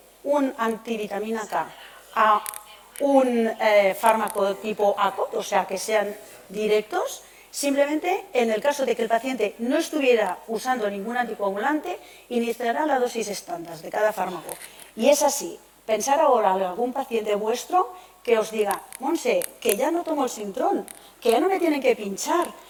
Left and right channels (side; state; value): both; identical; correlation 1.00